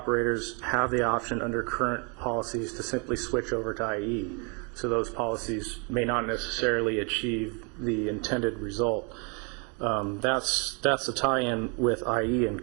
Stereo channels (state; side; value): quieter; left; 33.9 dB